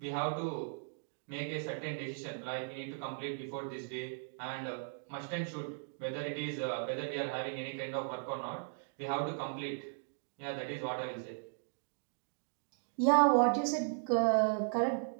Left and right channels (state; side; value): silent; left; digital silence